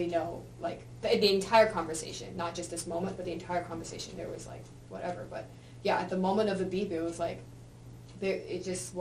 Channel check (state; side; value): identical; both; correlation 1.00